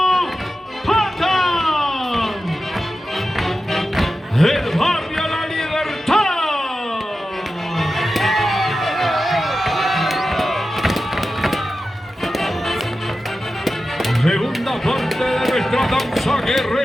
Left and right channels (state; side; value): normal; both; correlation 0.92